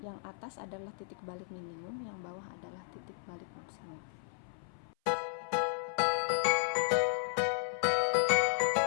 yang atas adalah titik balik minimum, yang bawah adalah titik balik maksimum.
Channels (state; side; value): silent; right; 55 dB below the other